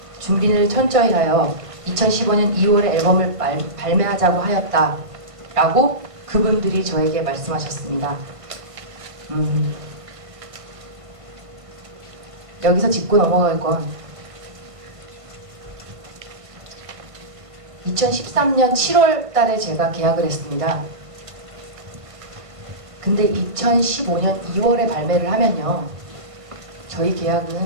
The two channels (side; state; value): left; late; 1.5 ms